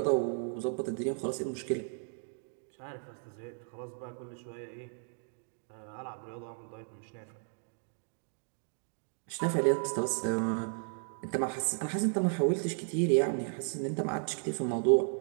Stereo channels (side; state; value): left; silent; 55 dB below the other